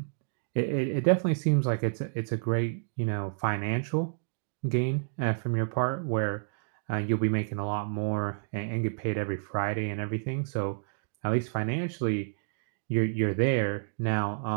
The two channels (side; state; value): left; silent; digital silence